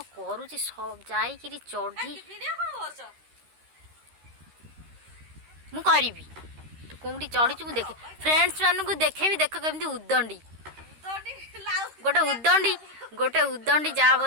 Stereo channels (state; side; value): late; left; 13 ms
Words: करुच्ची सब जाइए चढ़ी मु करी तू कौटी चढ़ी मुझे देखे फ्रेंड्स मानू देखे देख केमती उदंडी गोटे उदंडी